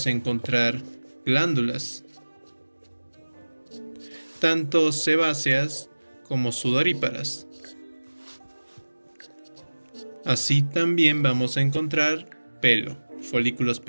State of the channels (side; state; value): both; inverted; correlation -1.00